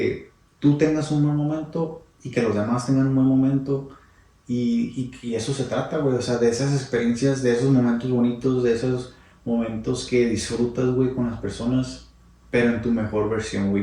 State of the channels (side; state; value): both; identical; correlation 1.00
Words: tú tengas un buen momento y que los demás tengan un buen momento. Y eso se trata, güey, o sea, de esas experiencias, de esos momentos bonitos, de esos momentos que disfrutas, güey, con las personas, pero en tu mejor versión,